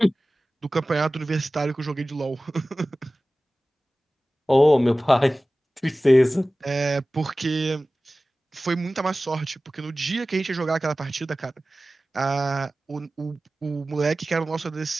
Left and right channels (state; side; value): normal; both; correlation 0.96